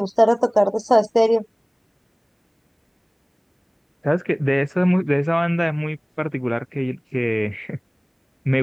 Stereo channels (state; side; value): identical; both; correlation 1.00